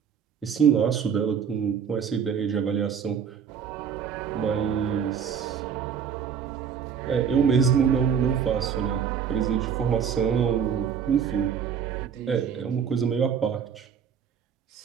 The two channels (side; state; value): left; quieter; 7.4 dB